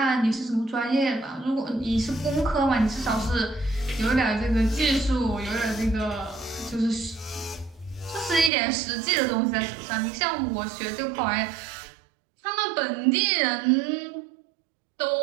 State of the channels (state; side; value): drops out; left; at 8.5 s